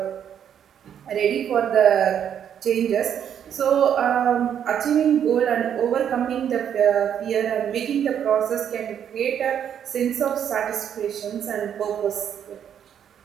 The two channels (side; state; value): left; quieter; 9.0 dB